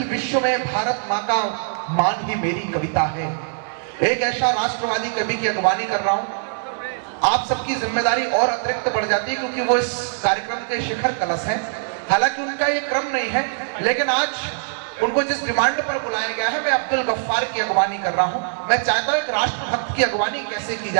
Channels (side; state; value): left; silent; digital silence